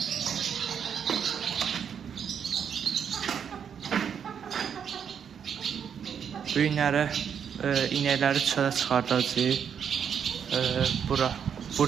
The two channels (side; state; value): left; quieter; 7.7 dB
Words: Bu günləri inəkləri çölə çıxardacağıq.